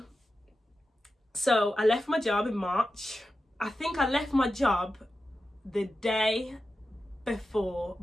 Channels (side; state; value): both; normal; correlation 0.92